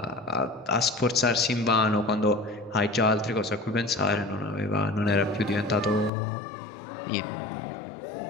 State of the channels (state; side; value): drops out; right; at 6.1 s